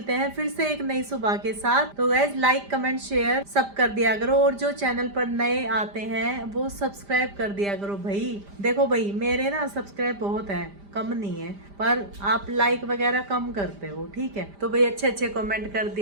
हैं फिर से एक नई सुबह के साथ। तो गाइज लाइक कमेंट शेयर सब कर दिया करो, और जो चैनल पर नए आते हैं वो सब्सक्राइब कर दिया करो भाई। देखो भाई मेरे ना सब्सक्राइब बहुत है, कम नहीं है, पर आप लाइक वगैरह कम करते हो, ठीक है। तो भाई अच्छे अच्छे कमेंट कर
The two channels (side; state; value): left; late; 5.0 ms